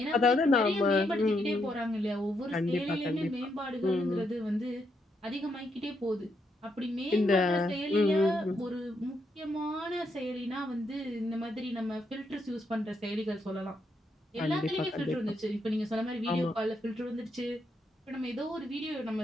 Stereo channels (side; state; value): both; normal; correlation 0.78